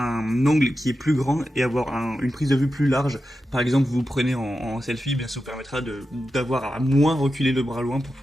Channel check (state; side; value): normal; both; correlation 0.90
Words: angle qui est plus grand et avoir une prise de vue plus large. Par exemple, vous prenez en selfie, bien ça vous permettra d'avoir à moins reculer le bras loin pour